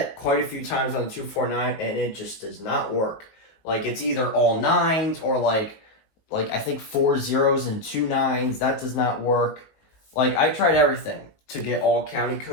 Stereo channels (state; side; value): late; right; 19 ms